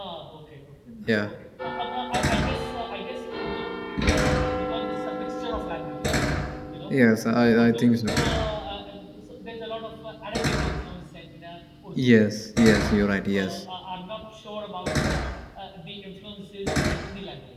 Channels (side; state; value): both; identical; correlation 1.00